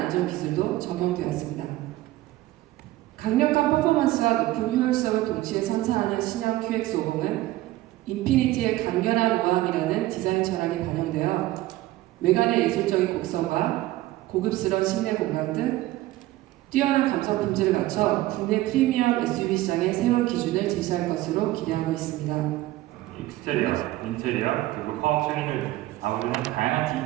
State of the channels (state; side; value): quieter; left; 16.7 dB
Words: 기술도 적용되었습니다. 강력한 퍼포먼스와 높은 효율성을 동시에 선사하는 신형 QX50은 인피니티의 강렬한 우아함이라는 디자인 철학이 반영되어 외관의 예술적인 곡선과 고급스러운 실내 공간 등 뛰어난 감성 품질을 갖춰 국내 프리미엄 SUV 시장의 새로운 기준을 제시할 것으로 기대하고 있습니다. 익스테리어, 인테리어, 그리고 파워트레인을 아우르는 다양한